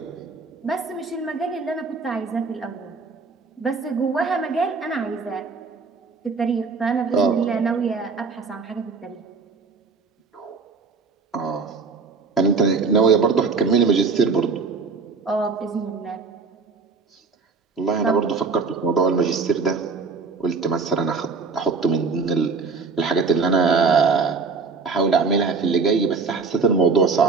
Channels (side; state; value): left; quieter; 4.7 dB